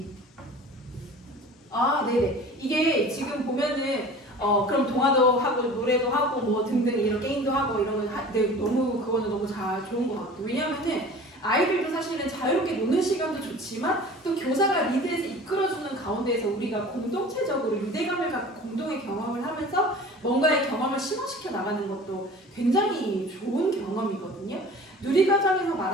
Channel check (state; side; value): normal; both; correlation 0.42